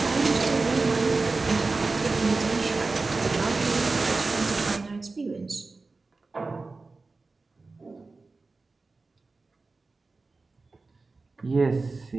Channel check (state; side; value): quieter; left; 3.7 dB